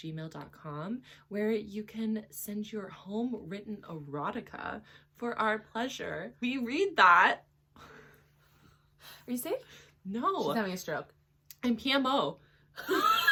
where you can send your home-written erotica for our pleasure. We read that. Are you safe? No. She's having a stroke. I'm PMO.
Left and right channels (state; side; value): identical; both; correlation 1.00